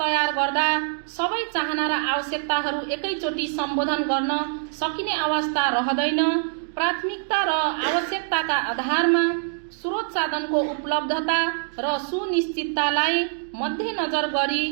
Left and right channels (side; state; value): left; silent; digital silence